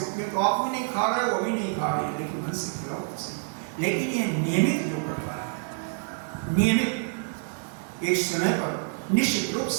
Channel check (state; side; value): silent; left; digital silence